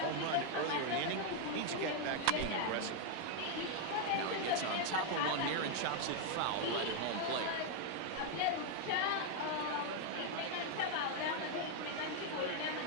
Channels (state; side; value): different; both; correlation 0.00